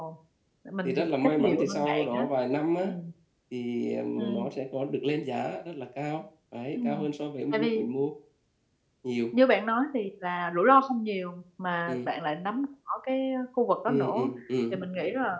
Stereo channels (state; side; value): identical; both; correlation 1.00